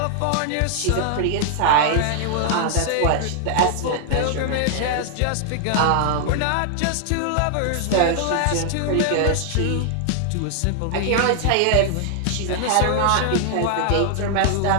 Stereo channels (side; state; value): both; different; correlation 0.00